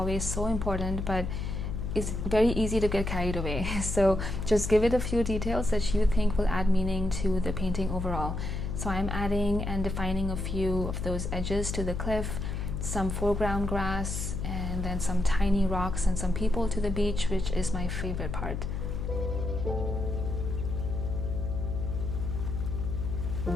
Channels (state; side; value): noise; left; hum, 3 dB below the sound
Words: so important, but it's very easy to get carried away. So just give it a few details that you think will add meaning to the painting overall. So I'm adding and defining a few of those edges to the cliff, some foreground grass, and then some tiny rocks and some people to the beach, which is my favorite part.